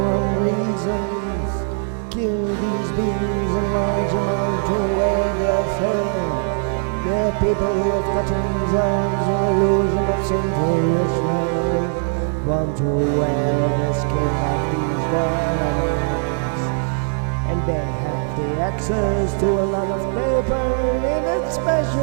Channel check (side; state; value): left; silent; digital silence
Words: wrong reasons. Kill these beings in large amount to wear their fur. They're people with cuttings, arms, or illusion of sinful rituals. Want to wear the skin of these wild animals, and they have the access to a lot of paper in a